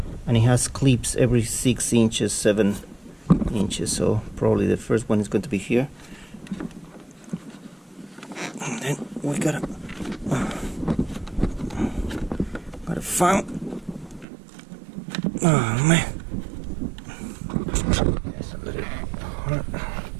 and it has clips every 6 inches, 7 inches. So probably the first one is going to be here, and then we gotta find. Oh man, that's a little hard.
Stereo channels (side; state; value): left; drops out; at 14.2 s